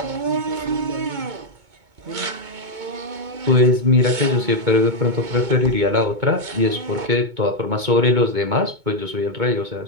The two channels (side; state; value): left; late; 2.2 ms